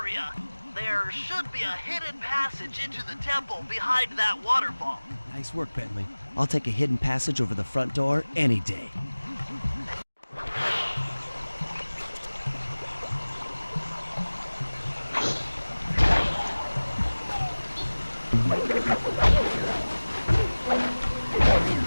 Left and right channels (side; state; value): both; inverted; correlation -1.00